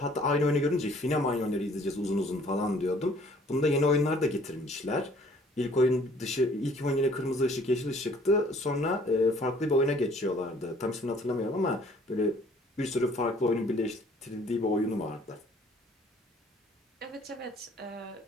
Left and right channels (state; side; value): normal; both; correlation 0.57